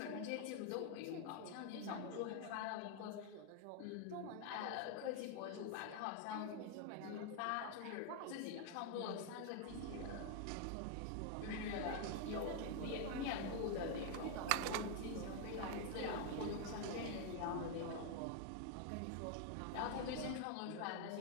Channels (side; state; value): both; different; correlation 0.00